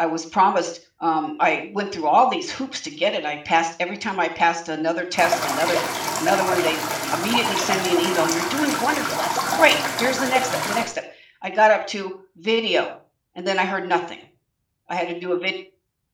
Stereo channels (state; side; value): identical; both; correlation 1.00